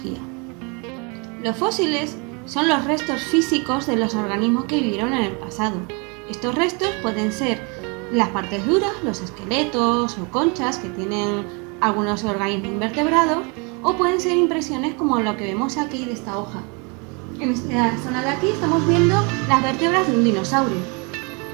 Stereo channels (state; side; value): quieter; left; 32.2 dB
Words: Los fósiles son los restos físicos de los organismos que vivieron en el pasado. Estos restos pueden ser las partes duras, los esqueletos o conchas que tienen algunos organismos invertebrados, o pueden ser impresiones como lo que vemos aquí de esta hoja. En esta zona de aquí estamos viendo las vértebras de un dinosaurio.